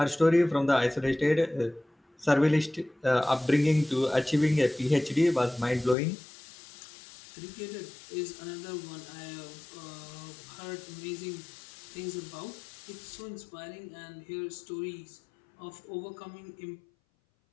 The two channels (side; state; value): right; drops out; at 6.0 s